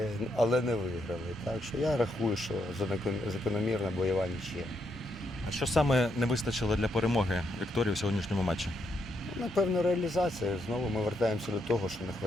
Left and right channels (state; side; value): normal; both; correlation 0.78